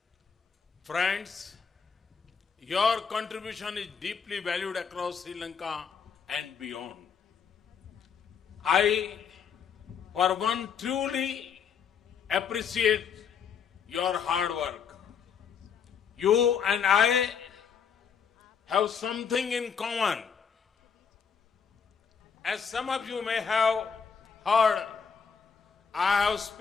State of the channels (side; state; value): right; quieter; 6.6 dB